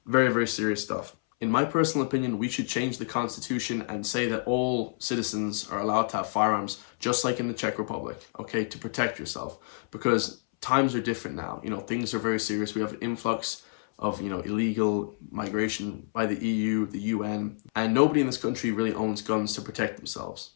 Very, very serious stuff. In my personal opinion, we should change the constitution and say that all citizens are allowed to have firearms, just like in the Czech Republic, okay, to protect yourself. Because times are different now. Things are very serious. We have an influx of illegal migration by the EU, the UN, and nobody in this country really owns guns to protect themselves.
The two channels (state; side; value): silent; right; 59 dB below the other